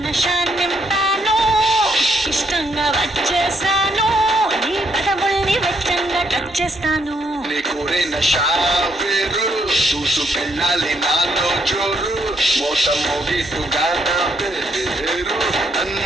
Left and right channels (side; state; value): both; normal; correlation 0.74